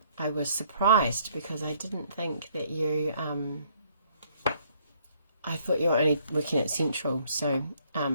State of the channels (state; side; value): inverted; both; correlation -0.66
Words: I was surprised because I didn't think that you, I thought you were only working at Central. So